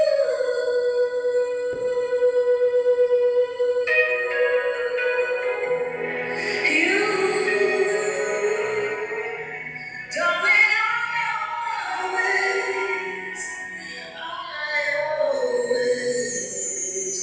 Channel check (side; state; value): both; identical; correlation 1.00